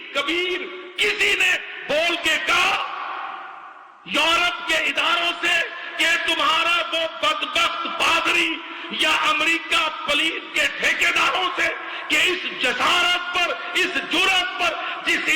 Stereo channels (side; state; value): both; identical; correlation 1.00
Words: کبیر، کسی نے بول کے کہا یورپ کے اداروں سے کہ تمہارا وہ بدبخت پادری یا امریکہ پولیس کے ٹھیکیداروں سے کہ اس جسارت پر، اس جرأت پر جس